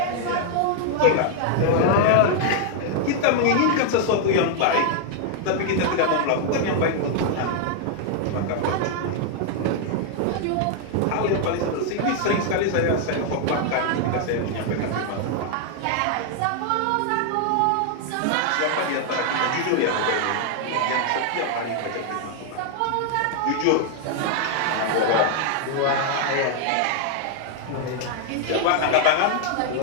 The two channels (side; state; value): both; different; correlation 0.00